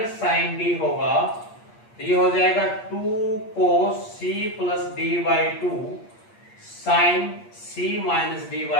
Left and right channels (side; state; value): right; late; 8.5 ms